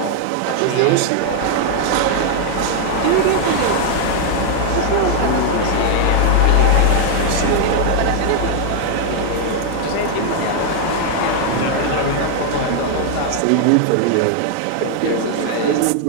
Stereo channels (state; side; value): different; both; correlation 0.00